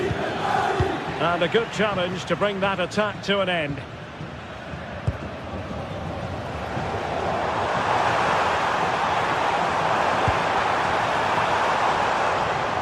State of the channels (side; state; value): both; identical; correlation 1.00